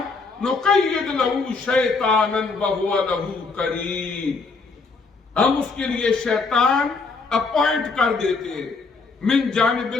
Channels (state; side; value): quieter; right; 4.3 dB